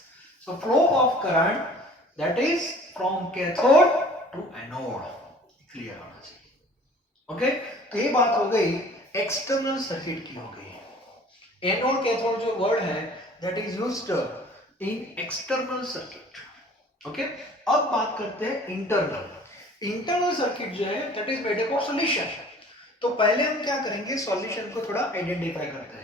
So flow of current that is from cathode to anode. Clear होना चाहिए. Okay, तो ये बात हो गई एक्सटर्नल सर्किट की हो गई. एनोड कैथोड जो वर्ड है that is used in external circuit. Okay, अब बात करते हैं इंटरनल. इंटरनल सर्किट जो है that is made up of solution. तो पहले हम क्या करेंगे, सॉल्यूशन को थोड़ा आइडेंटिफाई करते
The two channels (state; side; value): normal; both; correlation 0.49